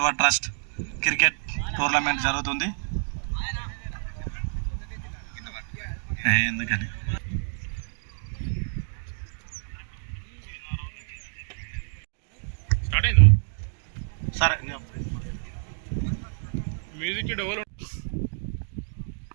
trust cricket tournament జరుగుతుంది. ఎందుకని స్టార్ట్ అయిందా? సరే మ్యూజిక్ డెవలప్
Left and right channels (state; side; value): silent; left; digital silence